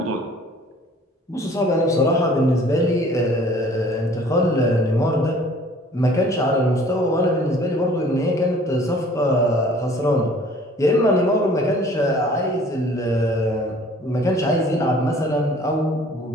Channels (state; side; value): normal; both; correlation 0.52